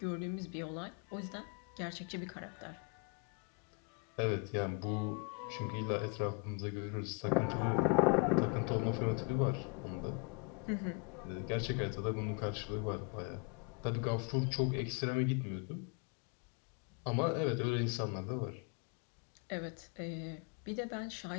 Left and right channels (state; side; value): quieter; right; 32.2 dB